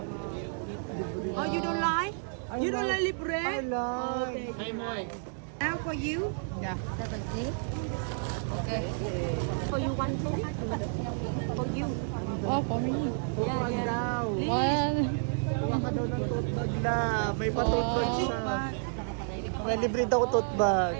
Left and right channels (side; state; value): left; silent; 57 dB below the other